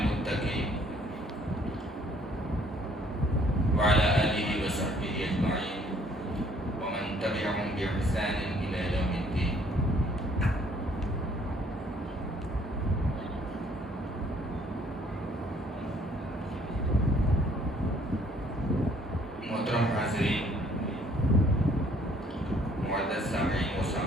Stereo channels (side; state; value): both; normal; correlation 0.61